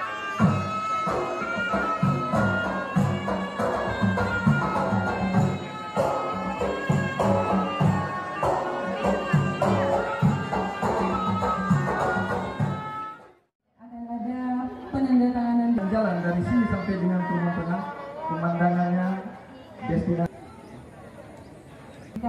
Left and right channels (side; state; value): both; identical; correlation 1.00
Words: Akan ada penandatanganan Jalan dari sini sampai dengan Rumah Tengah, pemandangannya destinasi.